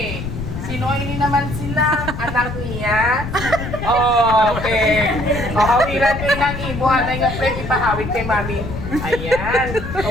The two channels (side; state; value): left; noise; rumble, 7 dB below the sound